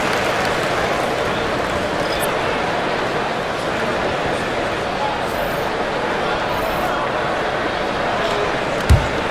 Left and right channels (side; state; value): both; identical; correlation 1.00